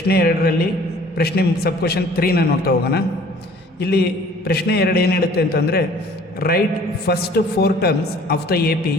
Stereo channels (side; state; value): both; normal; correlation 0.52